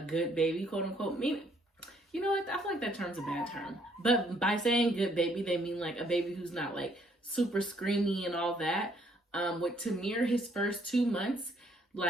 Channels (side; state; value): both; normal; correlation 0.66